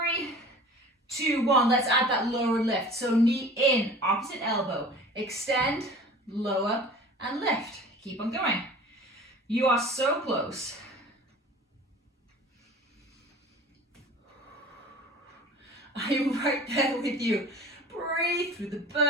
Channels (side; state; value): both; normal; correlation 0.42